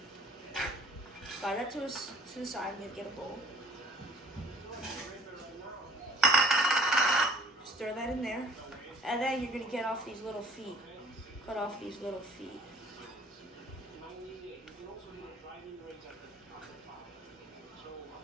Slide that to the side and get a bowl. Stir that in there. And then you're going to get off these little feet. Cut off these little feet.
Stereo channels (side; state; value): both; normal; correlation 0.53